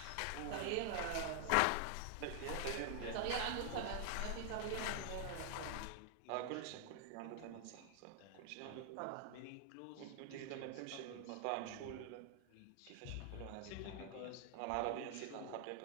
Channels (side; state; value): both; different; correlation 0.00